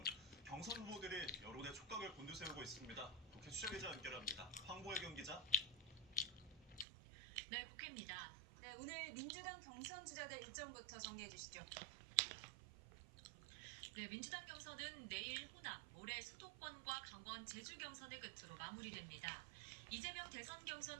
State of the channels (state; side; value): drops out; left; at 6.9 s